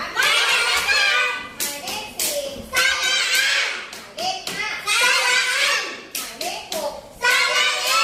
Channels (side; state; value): both; identical; correlation 1.00